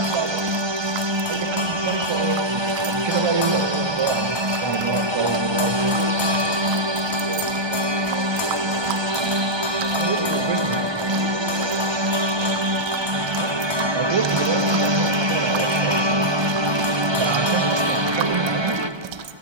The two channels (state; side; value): late; left; 1.2 ms